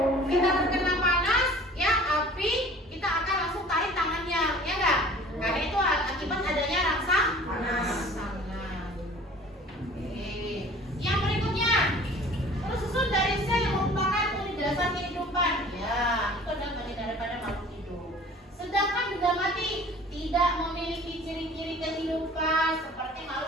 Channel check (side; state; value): both; normal; correlation 0.47